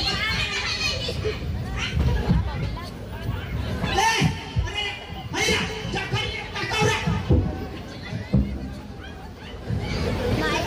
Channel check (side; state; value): both; identical; correlation 1.00